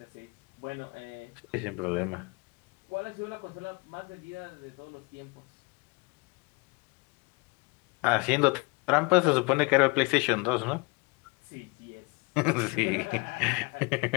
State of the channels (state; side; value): quieter; right; 28.6 dB